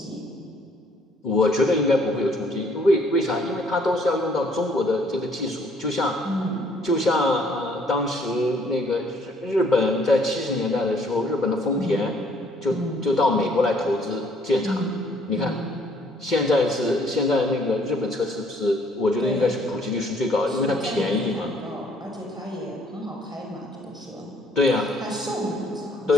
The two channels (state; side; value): normal; both; correlation 0.63